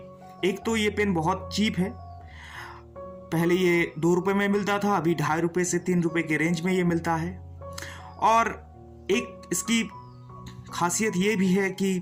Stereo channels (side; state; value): both; identical; correlation 1.00